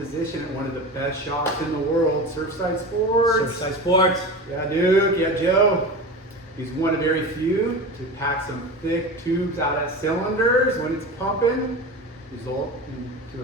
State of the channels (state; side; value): normal; both; correlation 0.29